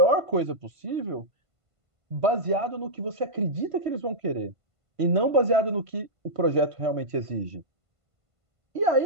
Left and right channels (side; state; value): left; late; 1.5 ms